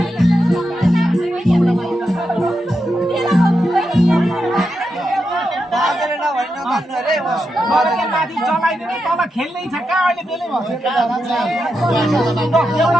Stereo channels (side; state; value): both; normal; correlation 0.86